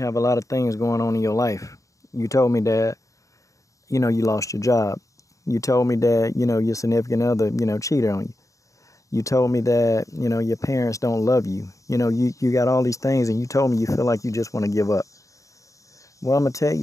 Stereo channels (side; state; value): right; late; 0.16 ms